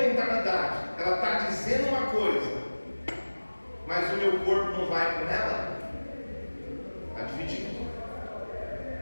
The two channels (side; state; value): both; inverted; correlation -1.00